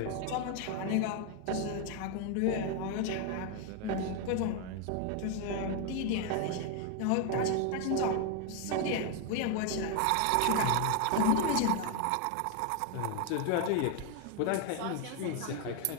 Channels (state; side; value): different; both; correlation 0.01